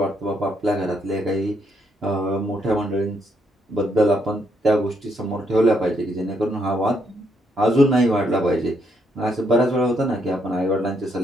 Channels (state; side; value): normal; both; correlation 0.75